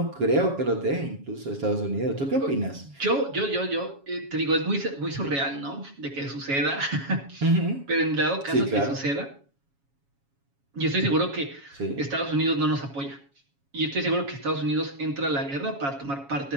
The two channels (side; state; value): left; late; 7.2 ms